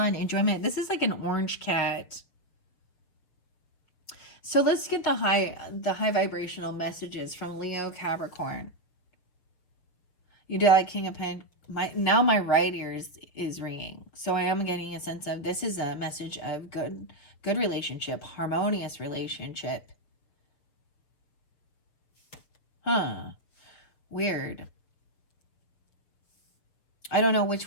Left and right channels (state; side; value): late; right; 6.8 ms